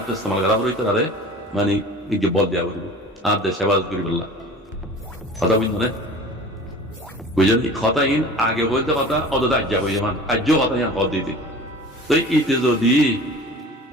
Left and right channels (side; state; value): both; normal; correlation 0.40